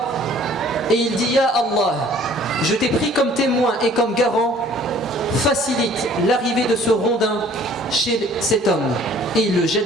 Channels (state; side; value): normal; both; correlation 0.54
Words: et il dit « Ya Allah, je t'ai pris comme témoin et comme garant, facilite l'arrivée de ce rondin chez cet homme. » Et il le